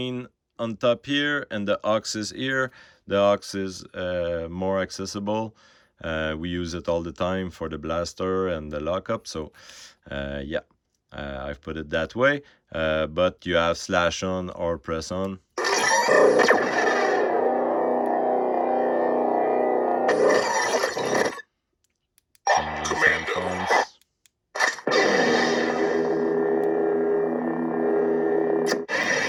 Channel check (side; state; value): both; identical; correlation 1.00